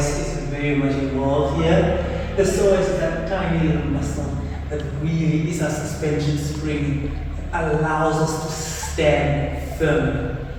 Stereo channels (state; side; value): identical; both; correlation 1.00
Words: very much involved here. The psoas is that tiny little muscle that really is a suspension spring that allows us to stand firm.